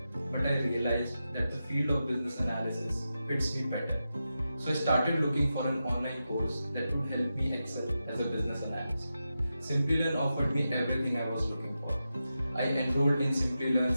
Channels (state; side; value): inverted; both; correlation -0.90